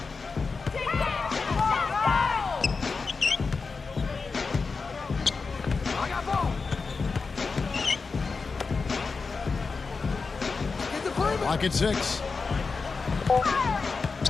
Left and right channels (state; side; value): quieter; right; 4.6 dB